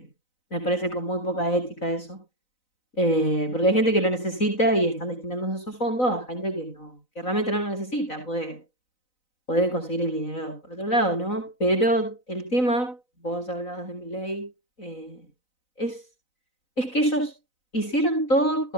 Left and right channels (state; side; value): late; right; 4.0 ms